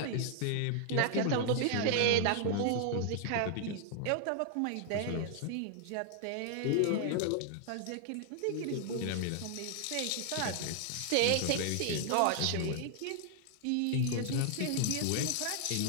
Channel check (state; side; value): different; both; correlation 0.00